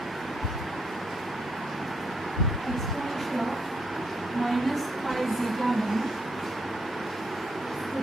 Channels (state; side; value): normal; both; correlation 0.75